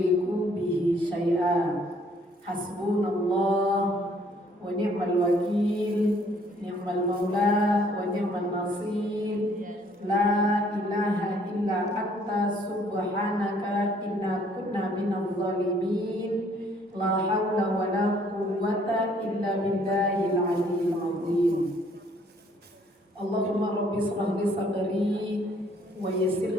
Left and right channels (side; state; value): both; normal; correlation 0.63